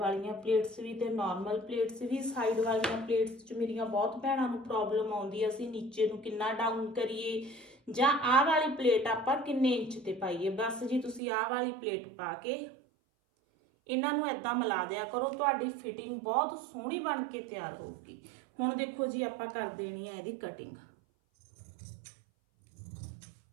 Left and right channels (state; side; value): drops out; left; at 11.2 s